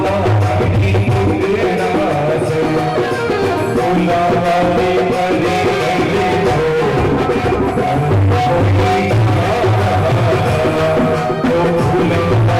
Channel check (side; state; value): both; identical; correlation 1.00